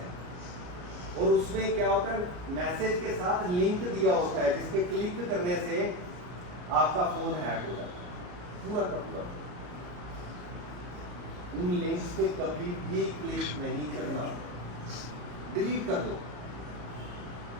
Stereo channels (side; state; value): left; late; 33 ms